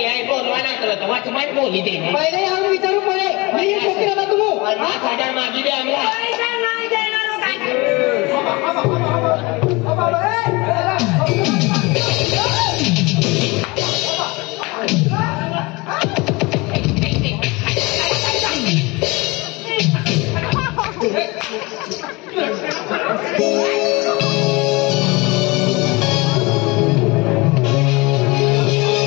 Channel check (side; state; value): right; quieter; 24.8 dB